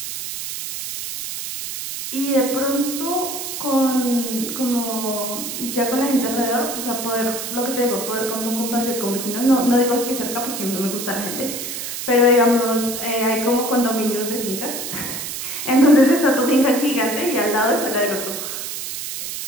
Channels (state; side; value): noise; right; hiss, 6 dB below the sound